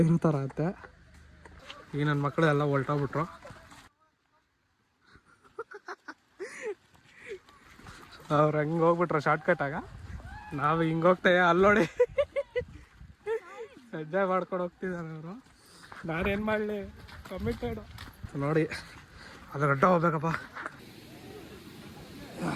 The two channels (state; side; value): identical; both; correlation 1.00